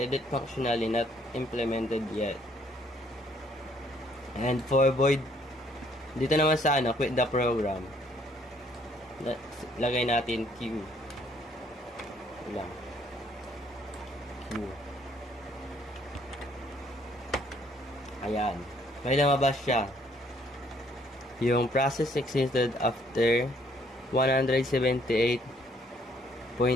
functionality not implemented yet. And for void, dito naman sa quit the program. Lagay natin Q. Lang. Q. Ayan. May lumabas siya. Yung process existed after 178.8.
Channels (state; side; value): normal; both; correlation 0.65